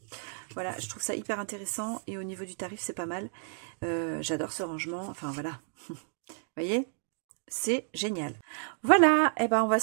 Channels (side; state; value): left; silent; 57 dB below the other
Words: Voilà, je trouve ça hyper intéressant et au niveau du tarif, c'est pas mal. J'adore ce rangement, enfin voilà, vous voyez ? C'est génial. Voilà, et ben on va